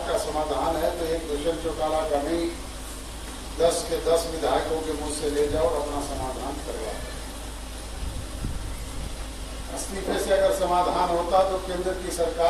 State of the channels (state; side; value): identical; both; correlation 1.00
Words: का समाधान है तो एक दुष्यंत चौटाला का नहीं, 10 के 10 विधायकों के मुंह से ले जाओ और अपना समाधान करवाओ। इस्तीफे से अगर समाधान होता तो केंद्र की